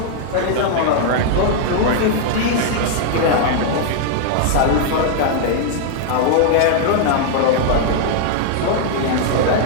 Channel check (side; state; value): both; different; correlation 0.00